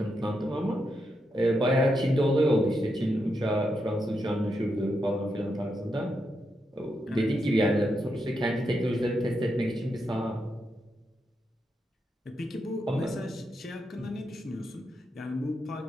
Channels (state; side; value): normal; both; correlation 0.84